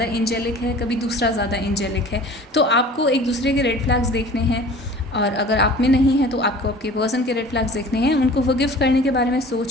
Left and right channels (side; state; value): both; normal; correlation 0.44